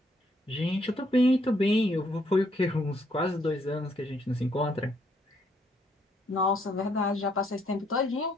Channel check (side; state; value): both; normal; correlation 0.71